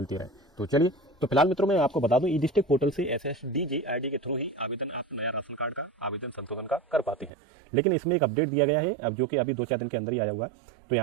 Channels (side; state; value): left; drops out; at 7.3 s